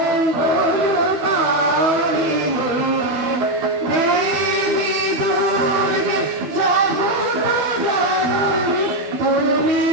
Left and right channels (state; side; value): late; left; 12 ms